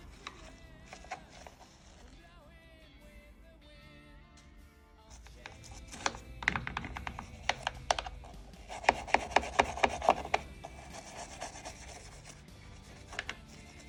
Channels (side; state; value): both; identical; correlation 1.00